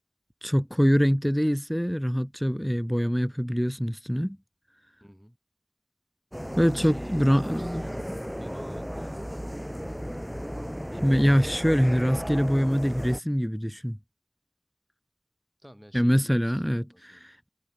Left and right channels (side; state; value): both; identical; correlation 1.00